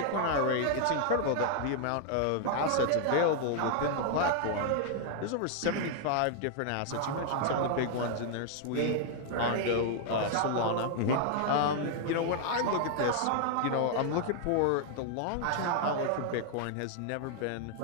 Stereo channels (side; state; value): both; different; correlation 0.00